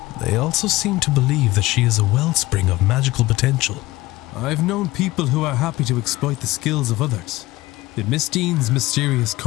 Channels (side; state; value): right; quieter; 18.8 dB